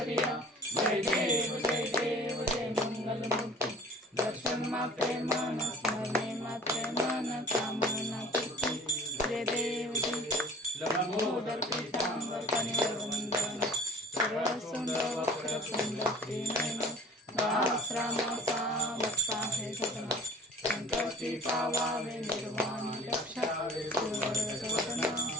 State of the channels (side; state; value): both; normal; correlation 0.46